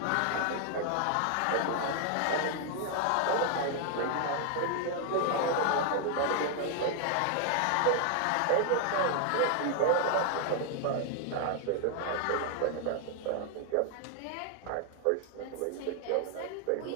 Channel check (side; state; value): both; different; correlation 0.00